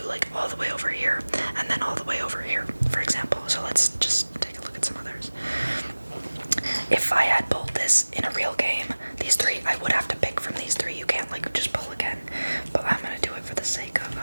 like all the way over here and then all the way over here, for example. So let's just take a look at some others. If I had pulled this in a real game, these 3, I would have to pick from these 3. You can't like just pull again, but I'm gonna do it for the sake of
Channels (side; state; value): both; inverted; correlation -1.00